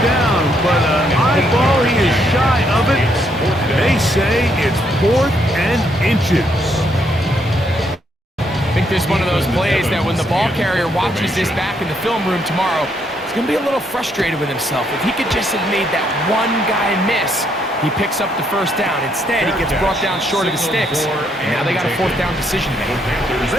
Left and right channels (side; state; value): both; normal; correlation 0.73